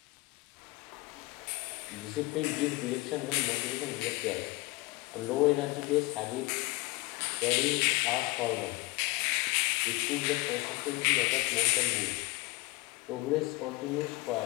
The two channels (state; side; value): quieter; right; 22.2 dB